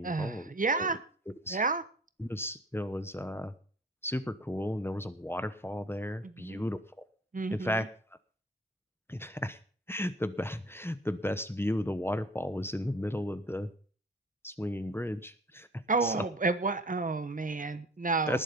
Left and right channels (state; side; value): normal; both; correlation 0.48